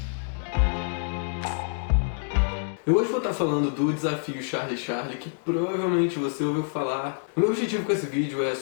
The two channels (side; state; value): right; silent; digital silence